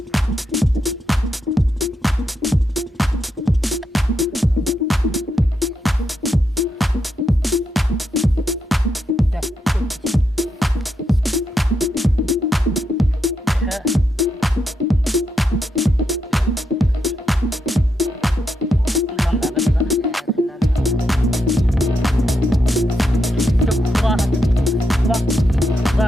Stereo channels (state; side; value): normal; both; correlation 0.82